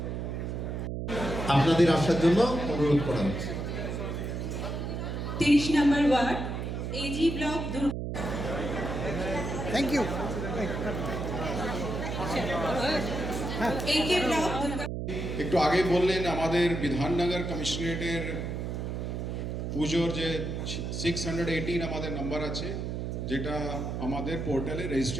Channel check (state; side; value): noise; right; hum, 4 dB below the sound